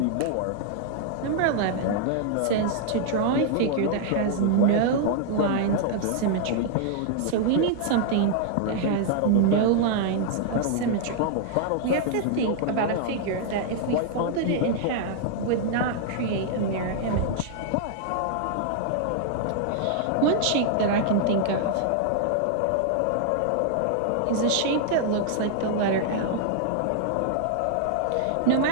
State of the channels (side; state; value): both; different; correlation -0.01